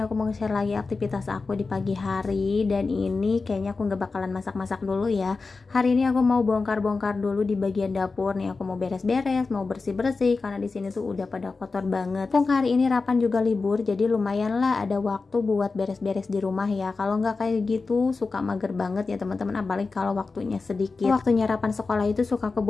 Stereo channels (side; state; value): right; quieter; 4.1 dB